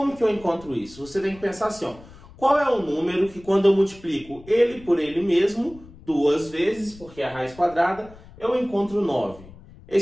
que eu encontro isso? Você tem que pensar assim, ó. Qual é o número que quando eu multiplico ele por ele mesmo, duas vezes, porque é a raiz quadrada, eu encontro 9.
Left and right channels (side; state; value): left; noise; rumble, 21 dB below the sound